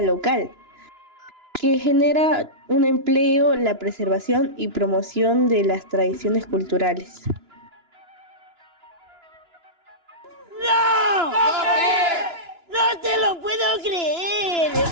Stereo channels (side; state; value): left; late; 2.9 ms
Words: local, que genera un empleo, la preservación y promoción de las tradiciones culturales. ¡No! ¡No te lo puedo creer!